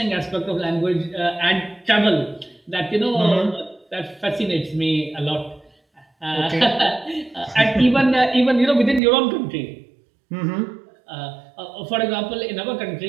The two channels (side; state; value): left; drops out; at 9.0 s